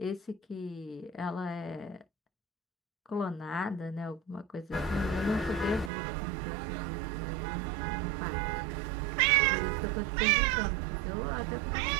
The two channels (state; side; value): drops out; left; at 5.9 s